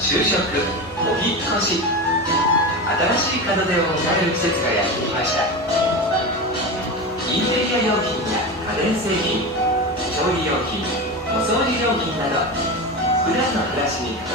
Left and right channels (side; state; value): both; normal; correlation 0.23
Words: 職、お引っ越し、新しい門出を迎える季節がやってきました。インテリア用品や家電製品、調理用品、お掃除用品など普段の暮らしに欠